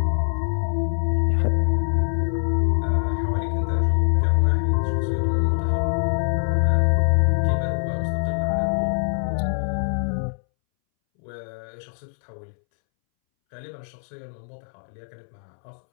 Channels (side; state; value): right; silent; 63 dB below the other